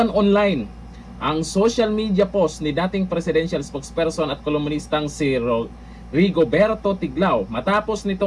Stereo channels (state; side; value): identical; both; correlation 1.00